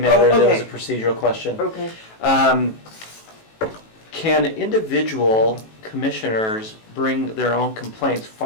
Oh, That was a okay. procedural question. Okay. Can individual commissioners bring their own complaints,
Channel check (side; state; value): right; late; 18 ms